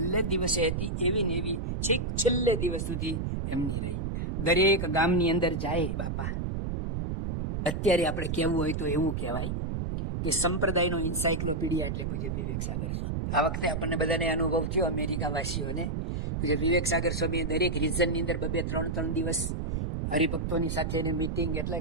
દિવસે હતી એવી ને એવી છેક છેલ્લે દિવસ સુધી એમની રહી. દરેક ગામની અંદર જાય બાપા, અત્યારે આપણે કહેવું હોય તો એવું કહેવાય કે સંપ્રદાયનો એન્સાઇક્લોપીડિયા એટલે પૂજ્ય વિવેક સાગર સ્વામી. આ વખતે આપણને બધાને અનુભવ થયો અમેરિકા વાસીઓને. પૂજ્ય વિવેક સાગર સ્વામીએ દરેક રિજનની અંદર 2-3 દિવસ હરિભક્તોની સાથે મીટિંગ એટલે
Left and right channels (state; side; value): noise; right; rumble, 2 dB below the sound